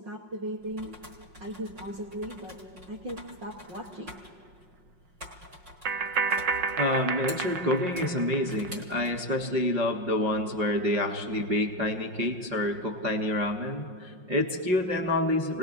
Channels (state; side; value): late; left; 5.5 ms